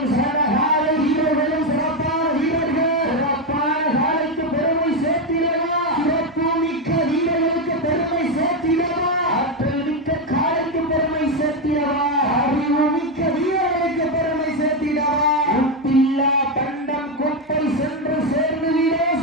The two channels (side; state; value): both; normal; correlation 0.08